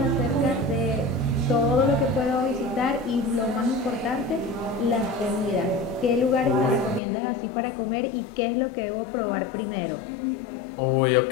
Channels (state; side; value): drops out; right; at 7.0 s